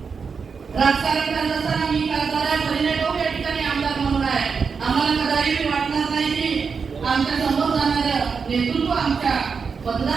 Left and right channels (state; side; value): quieter; left; 5.6 dB